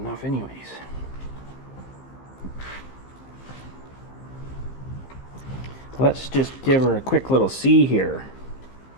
anyways. Let's just give her a quick little see here.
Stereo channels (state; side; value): late; right; 15 ms